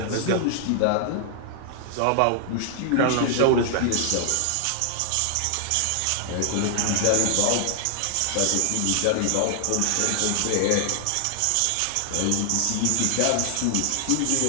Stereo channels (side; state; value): both; different; correlation 0.00